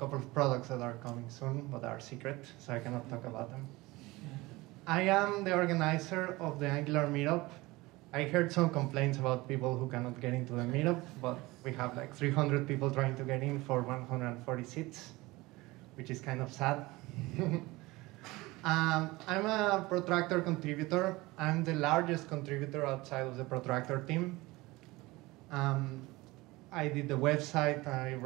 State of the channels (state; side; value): quieter; left; 21.0 dB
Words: of products that are coming soon, but are secret, so I cannot talk about them. I am the organizer of the Angular meetup. I heard some complaints about people who cannot get into the meetup, but we have like 300 people trying to get in for 140 seats, which is kind of sad. I'm a Protractor contributor. I'm the largest contributor outside of the Protractor team. I did the website. I